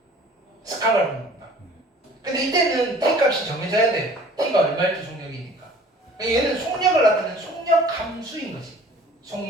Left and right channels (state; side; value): normal; both; correlation 0.50